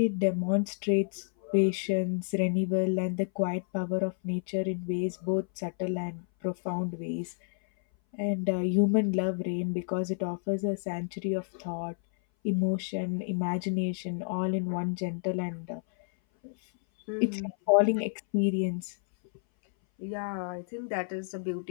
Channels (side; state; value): right; silent; 58 dB below the other